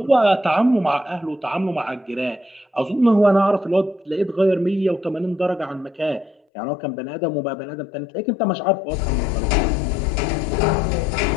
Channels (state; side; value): drops out; right; at 6.4 s